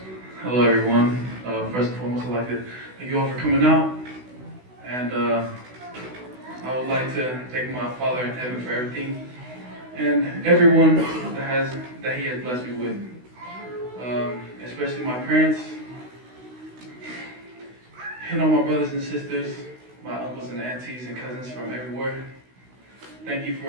Hello, everyone. First and foremost, I'd like to thank you all for coming out. And I would like to thank my Father in heaven for everything and everyone that He has blessed me with. Especially my parents, and all my brothers and sisters, my uncles and aunties and cousins from everywhere. Thank you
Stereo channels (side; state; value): left; late; 16 ms